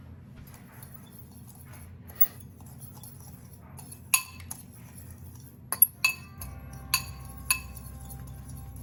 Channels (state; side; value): identical; both; correlation 1.00